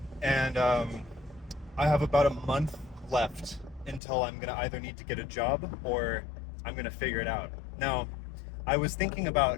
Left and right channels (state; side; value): drops out; right; at 4.0 s